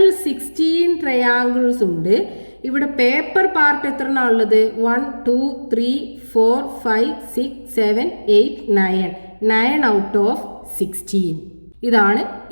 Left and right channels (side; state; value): both; inverted; correlation -1.00